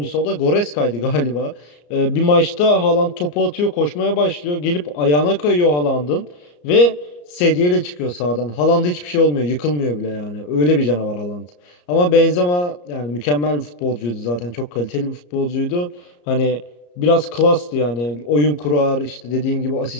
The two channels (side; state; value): right; late; 34 ms